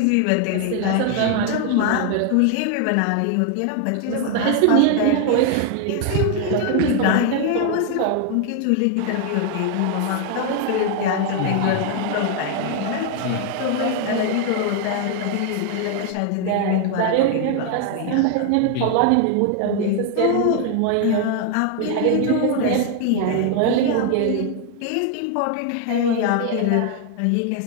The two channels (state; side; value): different; both; correlation 0.00